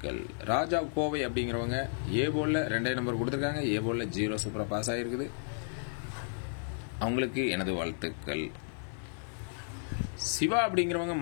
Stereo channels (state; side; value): silent; right; 56 dB below the other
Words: ராஜா கோவை அப்படிங்கிறவங்க ஏ போர்டில் 2 நம்பர் கொடுத்துருக்காங்க. ஏ போர்டில் 0 சூப்பராக பாஸ் ஆகிருக்குது. அவங்களுக்கு எனது வாழ்த்துக்கள். சிவா அப்படிங்கிறவங்க